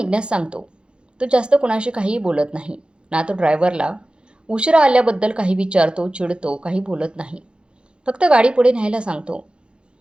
सांगतो. तो जास्त कुणाशी काहीही बोलत नाही. ना तो ड्रायव्हरला उशिरा आल्याबद्दल काही विचारतो, चिडतो, काही बोलत नाही. फक्त गाडी पुढे न्यायला सांगतो.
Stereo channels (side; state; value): left; late; 0.054 ms